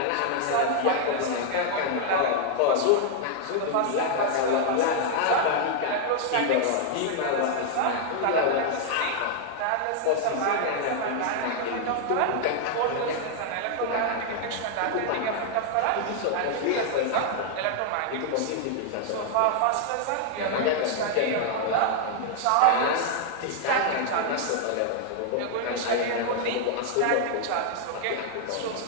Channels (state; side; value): different; both; correlation 0.00